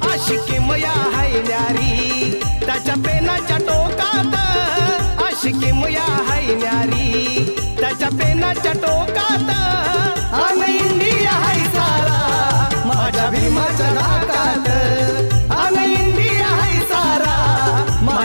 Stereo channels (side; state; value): both; inverted; correlation -1.00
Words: आशिकी मया हाय न्यारी त्याच्या पेनाच्या टोकात, आशिकी मया हाय न्यारी त्याच्या पेनाच्या टोकात. अन इंडिया हाय सारा माझ्या भीमाच्या नाकात, अन इंडिया हाय सारा